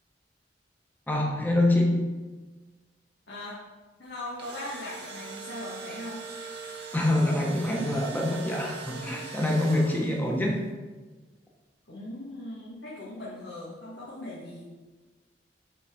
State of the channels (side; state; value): both; normal; correlation 0.80